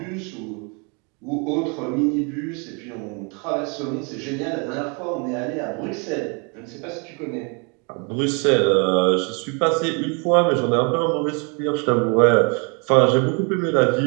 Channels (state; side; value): quieter; left; 34.0 dB